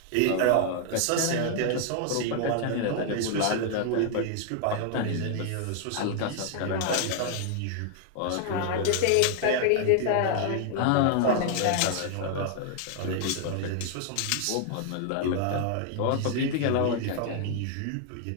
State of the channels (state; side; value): different; both; correlation 0.00